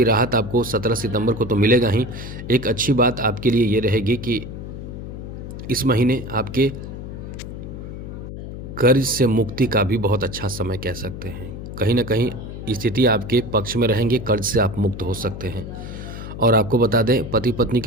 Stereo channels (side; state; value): left; noise; hum, 9 dB below the sound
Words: राहत आपको 17 सितंबर को तो मिलेगा ही। एक अच्छी बात आपके लिए ये रहेगी कि इस महीने आपके कर्ज से मुक्ति का भी बहुत अच्छा समय कह सकते हैं। कहीं ना कहीं स्थिति आपके पक्ष में रहेंगे, कर्ज से आप मुक्त हो सकते हैं। और आपको बता दें, पति पत्नी